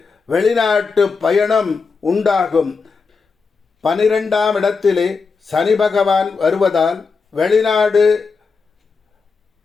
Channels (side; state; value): right; quieter; 4.9 dB